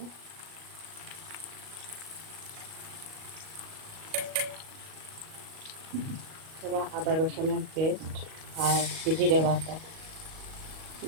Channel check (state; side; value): late; left; 38 ms